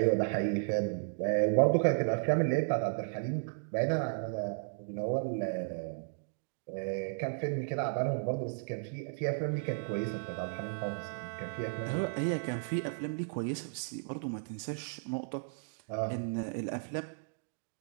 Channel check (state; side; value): silent; left; digital silence